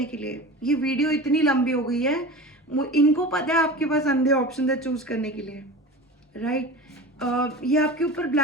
के लिए। ये वीडियो इतनी लंबी हो गई है, इनको पता है आपके पास अंधे ऑप्शन है चूज करने के लिए, राइट। ये आपके ऊपर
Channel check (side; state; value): both; normal; correlation 0.33